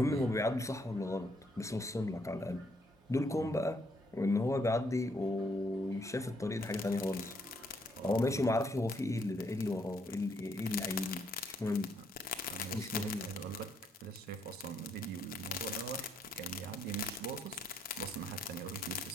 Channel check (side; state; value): both; normal; correlation 0.72